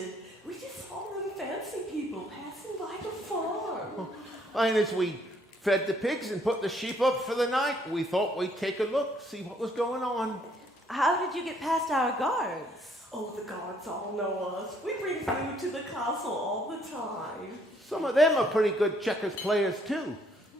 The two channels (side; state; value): both; normal; correlation 0.66